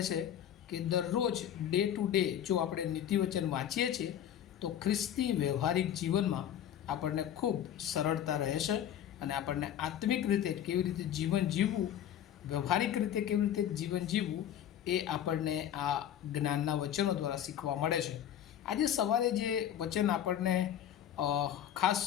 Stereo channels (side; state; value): right; quieter; 10.3 dB